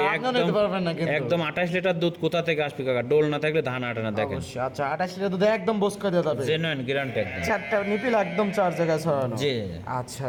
আপনিও নিতে পারবেন না কিন্তু। একদম 28 লিটার দুধ কোথা থেকে আসবে কাকা, ডোল না থাকলে ধান আটে না দেখেন। অবশ্যই। আচ্ছা 28 লিটার দুধ একদম বস করে দেওয়া যাবে, জেনুইন গ্যারান্টি একদম। চারটা নিপিল একদম 4 জায়গায় ছড়ানো। জি আচ্ছা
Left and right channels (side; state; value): both; identical; correlation 1.00